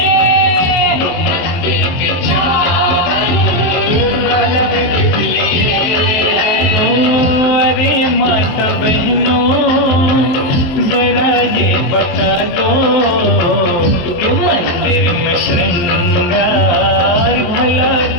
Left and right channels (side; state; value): right; late; 23 ms